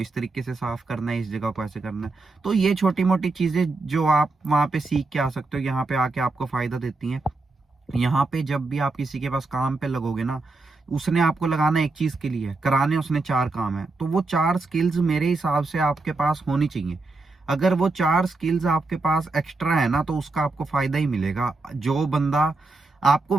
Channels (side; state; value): left; quieter; 3.4 dB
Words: इस तरीके से साफ करना है, इस जगह को ऐसे करना है। तो ये छोटी मोटी चीजें जो आप वहां पे सीख के आ सकते हो, यहाँ पे आके आपको फायदा देती हैं। यहाँ पे जब भी आप किसी के पास काम पे लगोगे ना, उसने आपको लगाना एक चीज के लिए, कराने उसने 4 काम है, तो वो 4 स्किल्स मेरे हिसाब से आपके पास होनी चाहिए। अगर वो 4 स्किल्स आपके पास एक्स्ट्रा है ना, तो उसका आपको फायदा ही मिलेगा। जो बंदा, आपको